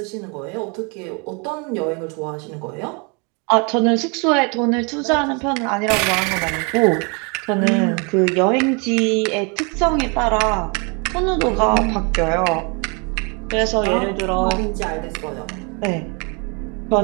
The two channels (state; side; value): quieter; left; 33.1 dB